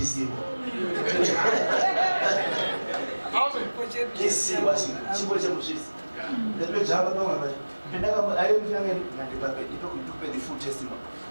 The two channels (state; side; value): inverted; both; correlation -1.00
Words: Kesi basi chipo cha mshisi. Ndio jamba kama basi. Penda kama ayo mfyange ngandibape itokupe the full testimony.